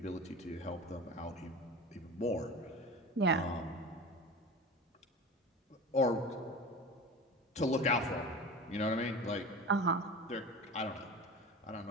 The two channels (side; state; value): both; normal; correlation 0.33